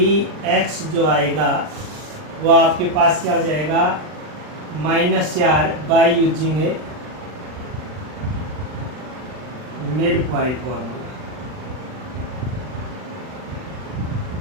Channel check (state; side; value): late; left; 39 ms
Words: जो आएगा वो आपके पास क्या हो जाएगा, -4 by using A mid point formula.